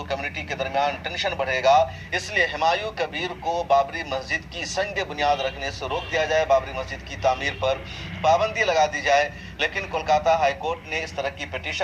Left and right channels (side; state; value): both; identical; correlation 1.00